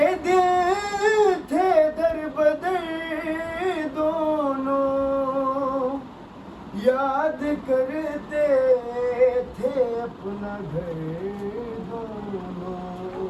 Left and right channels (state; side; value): identical; both; correlation 1.00